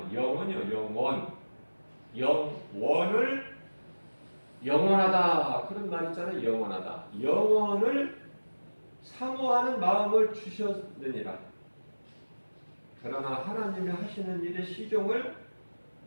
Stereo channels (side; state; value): both; inverted; correlation -1.00